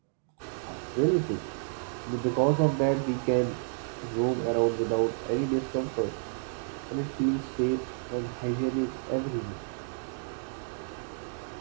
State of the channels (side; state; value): left; silent; digital silence